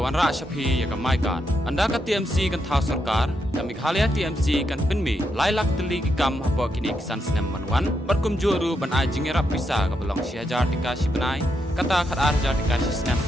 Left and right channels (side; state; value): both; normal; correlation 0.81